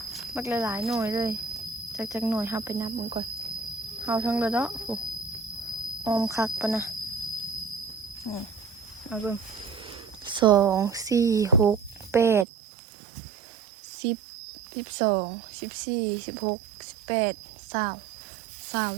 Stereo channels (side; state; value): left; drops out; at 12.5 s